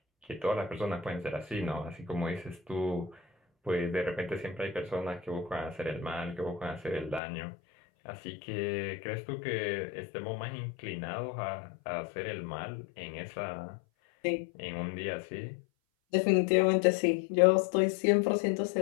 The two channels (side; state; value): right; drops out; at 7.2 s